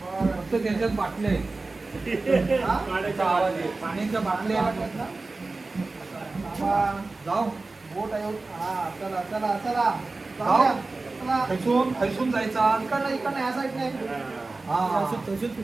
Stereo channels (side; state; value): left; quieter; 3.5 dB